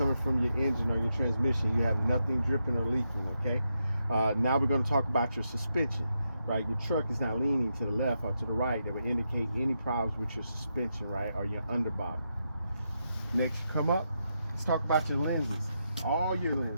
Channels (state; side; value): inverted; both; correlation -0.84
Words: from your engine or your transmission. You have nothing dripping or leaking, okay? Now we're going to talk about your suspension, right? Your truck is not leaning to the left or to the right. That would indicate any problems with your suspension, right, or your underbody. Next, come up, let's talk about your lenses. All your